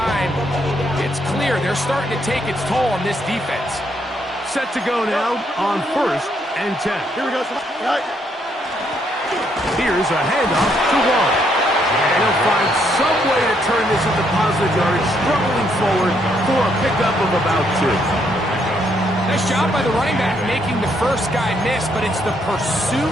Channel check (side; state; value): both; normal; correlation 0.73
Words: it's clear they're starting to take its toll on this defense. Set to go now on 1st and 10. Here we go. Here's a handoff to Wall. And he'll find some way to turn this into positive yardage, struggling forward for a pickup of about 2. Nice job by the running back making the first guy miss, but it's the